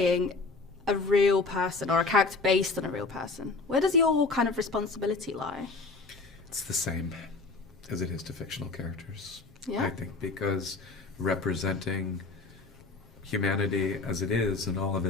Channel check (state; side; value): quieter; right; 3.7 dB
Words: a real person or a character based on a real person, where does your kind of responsibility lie? It's the same as it is to fictional characters. Yeah. I think because representing humanity as it is in all of